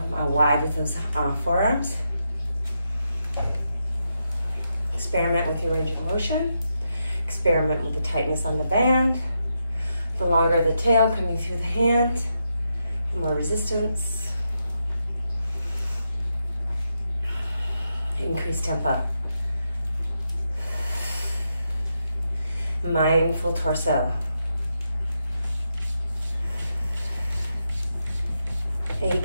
wide with those forearms. Experiment with your range of motion. Experiment with the tightness on the band. The longer the tail coming through the hand. More resistance. Increase tempo. Mindful torso. 8,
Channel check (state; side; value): inverted; both; correlation -0.84